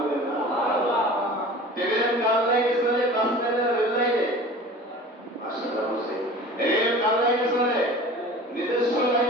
না? ট্রেন কার লাইনে চলে? বাস লাইনে, রেল লাইনে? মাশাআল্লাহ বলছে রেল কার লাইনে চলে? নিজস্ব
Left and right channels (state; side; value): normal; both; correlation 0.40